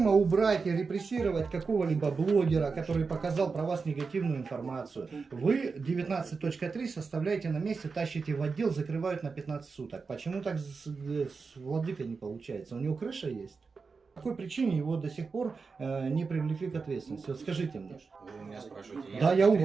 убрать и репрессировать какого-либо блогера, который показал про вас негативную информацию, вы 19.3 составляете на месте, тащите в отдел, закрывают на 15 суток. Почему так с владыкой не получается? У него крыша есть? По какой причине его до сих пор не привлекли к ответственности? Вот скажите мне. Вы у меня спрашиваете. Да, я у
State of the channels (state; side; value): quieter; left; 4.7 dB